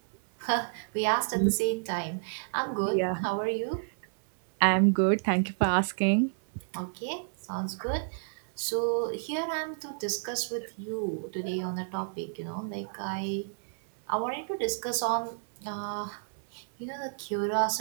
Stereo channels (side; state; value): left; silent; 58 dB below the other